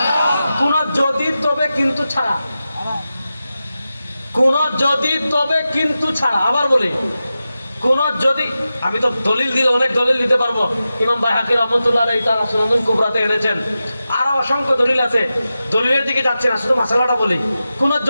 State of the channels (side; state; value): both; inverted; correlation -0.93